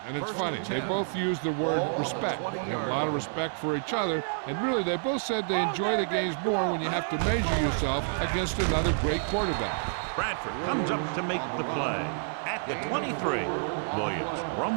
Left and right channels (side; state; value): left; silent; digital silence